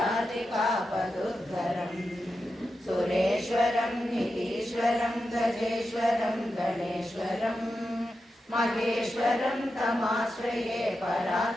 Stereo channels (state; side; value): normal; both; correlation 0.89